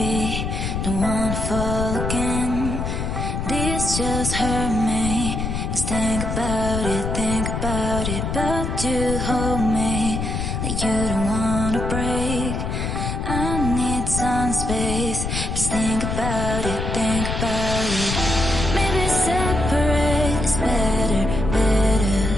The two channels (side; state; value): left; noise; rumble, 2 dB below the sound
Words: don't wanna fall again. This just hurt me. Just think about it, but you hold me like you don't wanna break. I need some space. Just think about it, think about it. Maybe separate is better, better.